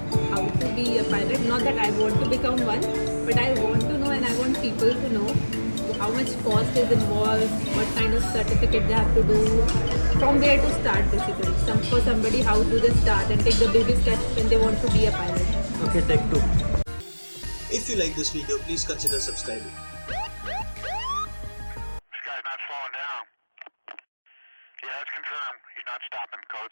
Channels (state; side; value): inverted; both; correlation -1.00